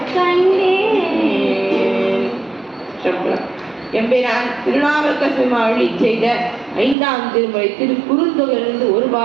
எம்பெருமான் திருநாவுக்கரசர் அருளி செய்த 5ஆம் திருமுறை திருக்குறுந்தொகையிலிருந்து ஒரு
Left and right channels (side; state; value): left; drops out; at 7.0 s